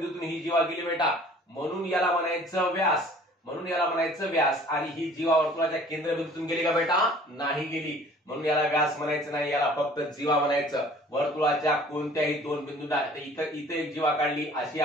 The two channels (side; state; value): both; normal; correlation 0.51